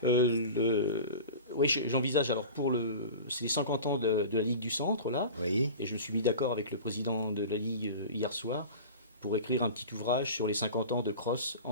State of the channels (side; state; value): both; inverted; correlation -0.35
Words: Oui, j'envisage alors c'est les 50 ans de la Ligue du Centre là, Oui, et je me suis mis d'accord avec le président de la Ligue hier soir pour écrire un petit ouvrage sur les 50 ans de cross